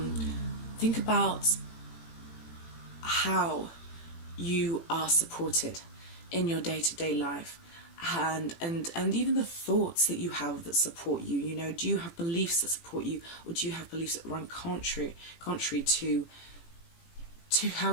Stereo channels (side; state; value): right; late; 18 ms